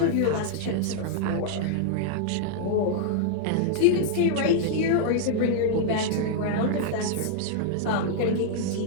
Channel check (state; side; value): different; both; correlation -0.01